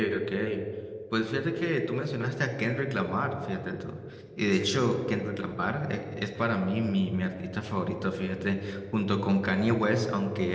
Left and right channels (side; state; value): both; identical; correlation 1.00